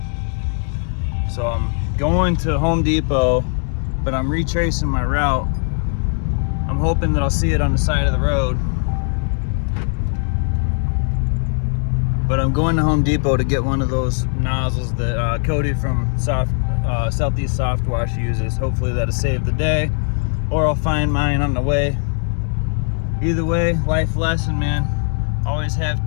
So I'm going to Home Depot, but I'm retracing my route. I'm hoping that I'll see it on the side of the road. But I'm going to Home Depot to get one of those nozzles that Cody from Southeast Soft Wash uses. Hopefully that'll save the day, or I'll find mine on the way. Either way, life lesson, man. Always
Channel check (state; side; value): silent; right; 56 dB below the other